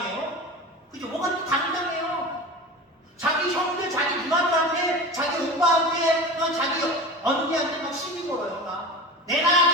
그죠? 뭐가 이렇게 당당해요? 자기 형들, 자기 누나들한테, 자기 오빠한테, 자기 언니한테 막 시비 걸어요. 내가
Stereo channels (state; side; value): normal; both; correlation 0.31